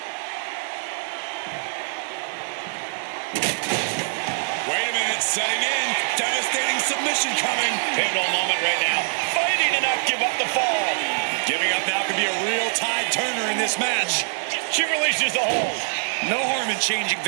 Wait a minute, setting in. Devastating submission coming. Pivotal moment right now. Fighting to not give up the fall. Giving up now could be a real tide turner in this match. She releases the hold. No harm in changing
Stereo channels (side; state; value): left; silent; digital silence